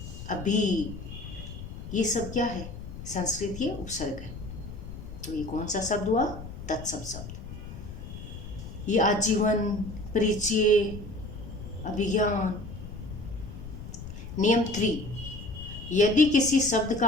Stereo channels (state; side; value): noise; left; rumble, 11 dB below the sound